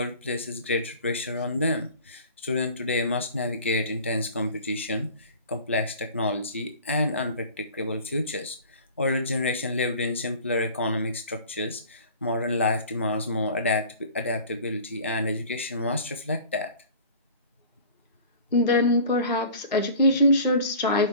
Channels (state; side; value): inverted; both; correlation -0.44